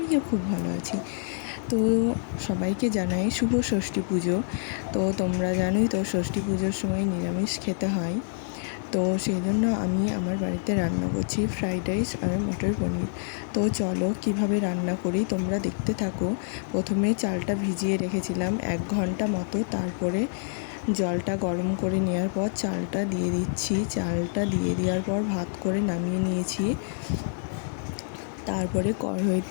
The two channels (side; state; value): right; silent; digital silence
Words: খুব ভালো আছি। তো সবাইকে জানাই শুভ ষষ্ঠী পুজো। তো তোমরা জানোই তো ষষ্ঠী পুজোর সময় নিরামিষ খেতে হয়। তো সেই জন্য আমি আমার বাড়িতে রান্না করছি ফ্রাইড রাইস আর মটর পনির। তো চলো কীভাবে রান্না করি তোমরা দেখতে থাকো। প্রথমে চালটা ভিজিয়ে রেখেছিলাম 1 ঘন্টা মতো, তারপরে জলটা গরম করে নেওয়ার পর চালটা দিয়ে দিচ্ছি। চালটা দিয়ে দেওয়ার পর ভাত করে নামিয়ে নিয়েছি। তারপরে